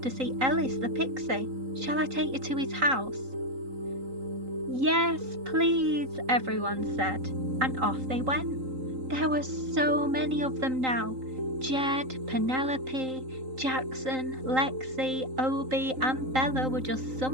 see Ellis the pixie. Shall I take you to his house? Yes, please, everyone said, and off they went. There were so many of them now. Jed, Penelope, Jackson, Lexi, Obie and Bella were just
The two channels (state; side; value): late; left; 3.8 ms